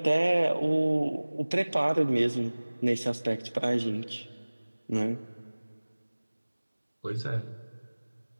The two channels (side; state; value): both; inverted; correlation -1.00